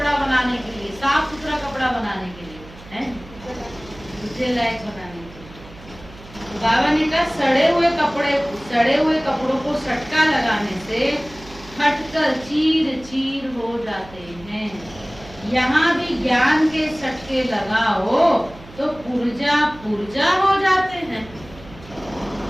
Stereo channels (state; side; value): noise; right; hum, 19 dB below the sound